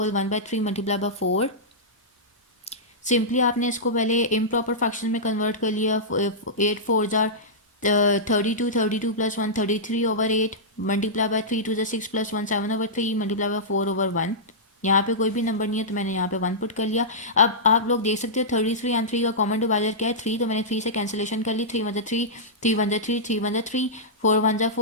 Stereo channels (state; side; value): normal; both; correlation -0.14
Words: 1/3 multiply by 4. Simply आपने इसको पहले इम्प्रॉपर फ्रैक्शन में कन्वर्ट कर लिया. 8 4 jar 32 plus 1 33/8 multiply by 3 2 6 plus 1 7/3 multiply by 4/1. यहाँ पे कोई भी नंबर नहीं है तो मैंने यहाँ पे 1 पुट कर लिया. अब आप लोग देख सकते हो 33 एंड 3 का कॉमन डिवाइजर क्या है 3, तो मैंने 3 से कैंसिलेशन कर ली. 3 1 3 3 1 3 3 1 3 4 1